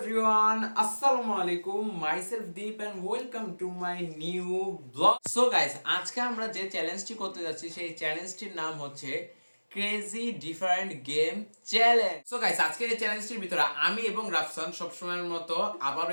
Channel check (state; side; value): inverted; both; correlation -1.00